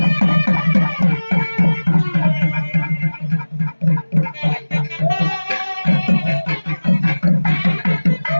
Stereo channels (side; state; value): both; inverted; correlation -1.00